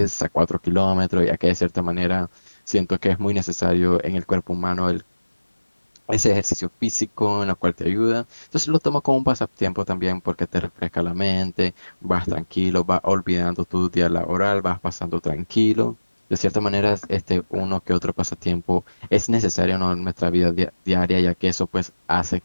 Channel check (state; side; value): inverted; both; correlation -1.00